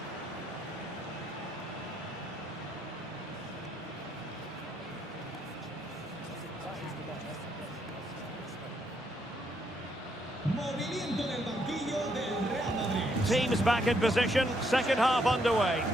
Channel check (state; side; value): normal; both; correlation 0.74